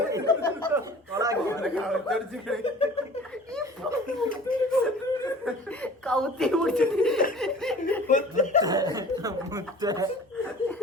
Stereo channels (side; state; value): both; normal; correlation 0.45